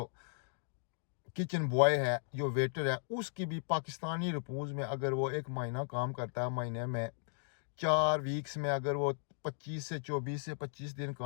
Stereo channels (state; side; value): silent; right; digital silence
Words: کچن بوائے ہے, جو ویٹر ہے, اس کی بھی پاکستانی رپوز میں اگر وہ ایک مہینہ کام کرتا ہے, مہینے میں 4 ویکس میں اگر وہ 24 سے 25 دن